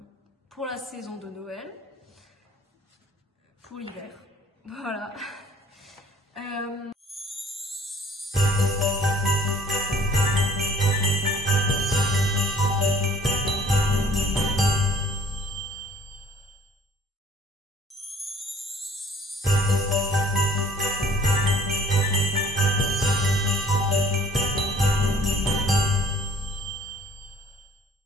pour la saison de Noël, pour l'hiver, voilà.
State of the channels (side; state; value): both; normal; correlation 0.55